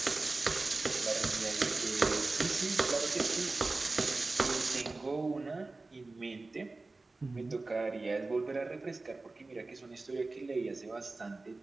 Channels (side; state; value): left; quieter; 3.4 dB